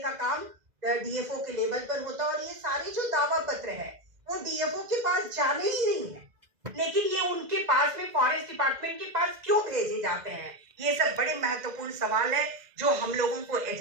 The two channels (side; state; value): left; late; 2.0 ms